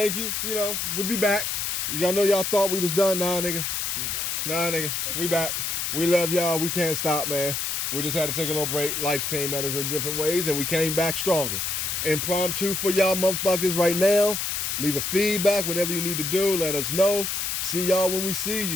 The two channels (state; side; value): noise; left; hiss, 1 dB below the sound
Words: you. We'll be back. Y'all know y'all thought we was done. Nah, nigga. We back. We love y'all. We can't stop, man. We just had to take a little break. Life came at us in different ways, and we came back stronger. Impromptu for y'all motherfuckers right now. Leave a feedback, whatever you need to do. Let us know. See y'all when we see